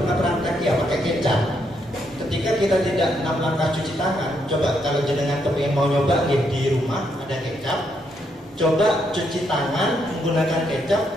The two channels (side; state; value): both; normal; correlation 0.76